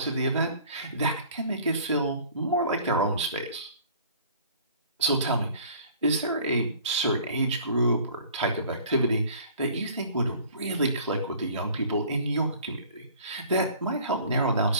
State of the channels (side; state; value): both; inverted; correlation -0.51